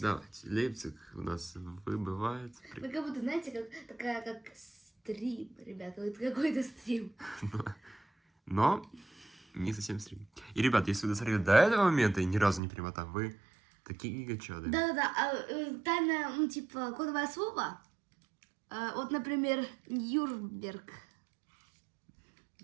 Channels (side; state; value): left; drops out; at 12.6 s